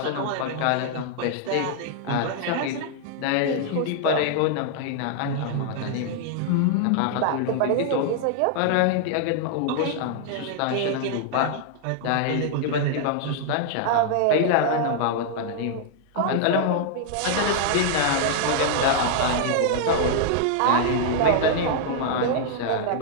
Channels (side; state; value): both; different; correlation -0.01